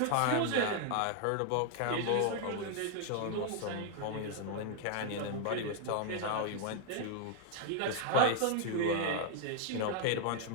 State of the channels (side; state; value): both; different; correlation 0.00